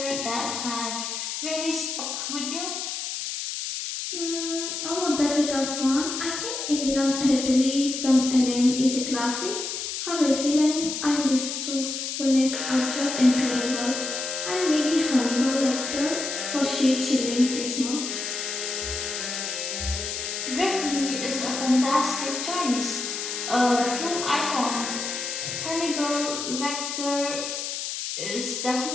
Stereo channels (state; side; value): noise; left; hiss, 4 dB below the sound